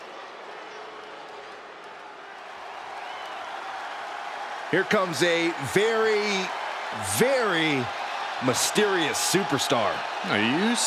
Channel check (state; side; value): identical; both; correlation 1.00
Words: Here comes a very, very mysterious superstar. Now, you